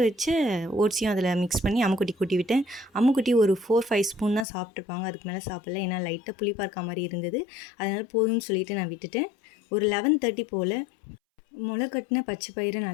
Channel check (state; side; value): drops out; right; at 4.5 s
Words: வச்ச ஓட்ஸையும் அதில் மிக்ஸ் பண்ணி அம்முக்குட்டி கூட்டி விட்டேன். அம்முக்குட்டி ஒரு 4-5 ஸ்பூன் தான் சாப்பிட்ருப்பாங்க, அதுக்கு மேலே சாப்பிடல. ஏன்னா லைட்டாக புளிப்பாக இருக்க மாதிரி இருந்தது. அதனால் போதும்னு சொல்லிவிட்டு நான் விட்டுட்டேன். ஒரு 11:30 போல் முளை கட்டின பச்சை பயிரை